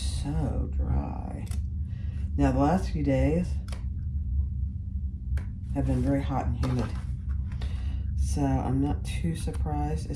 dry. Now the last few days have been very hot and humid. So I'm not too surprised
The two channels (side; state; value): both; identical; correlation 1.00